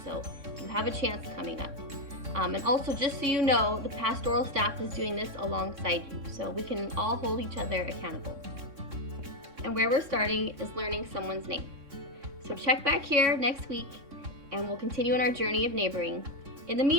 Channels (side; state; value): left; late; 3.6 ms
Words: So you have a chance coming up. And also, just so you know, the pastoral staff is doing this alongside you, so we can all hold each other accountable. And where we're starting is learning someone's name. So check back here next week, and we'll continue on our journey of neighboring. In the